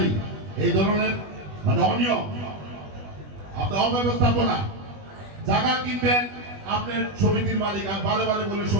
এই ধরনের মানে অনিয়ম, আপনার অব্যবস্থাপনা। জায়গা কিনবেন আপনার সমিতির মালিক, আর বারে বলে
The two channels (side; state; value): left; late; 20 ms